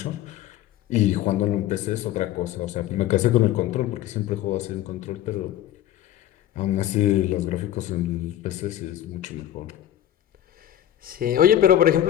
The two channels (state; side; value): quieter; right; 12.2 dB